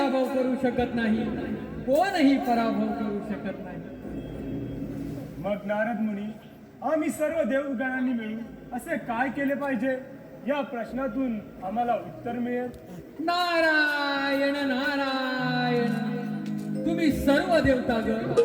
करू शकत नाही, कोणही पराभव करू शकत नाही. मग नारद मुनी, आम्ही सर्व देवगणांनी मिळून असे काय केले पाहिजे? या प्रश्नातून आम्हाला उत्तर मिळेल. नारायण नारायण तुम्ही सर्व देवतागण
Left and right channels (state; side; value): identical; both; correlation 1.00